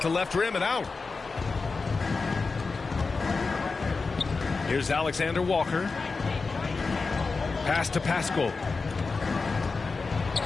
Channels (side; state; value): right; quieter; 4.3 dB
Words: the left rim and out. Here's Alexander Walker. Pass to Paschall.